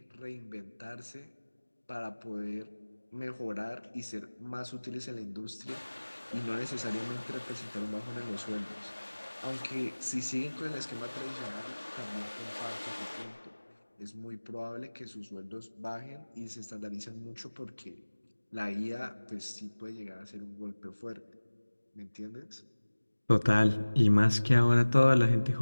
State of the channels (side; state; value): both; inverted; correlation -1.00